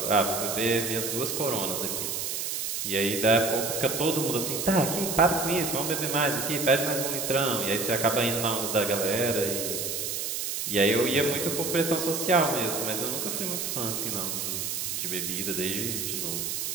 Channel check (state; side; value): noise; right; hiss, 2 dB below the sound